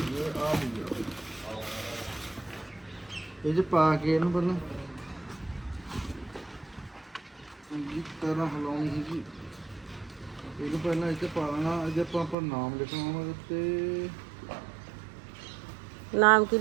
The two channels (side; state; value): left; drops out; at 12.4 s